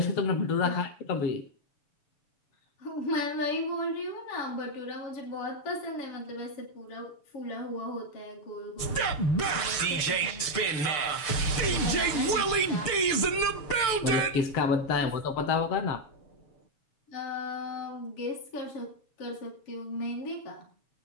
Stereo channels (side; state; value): right; late; 6.7 ms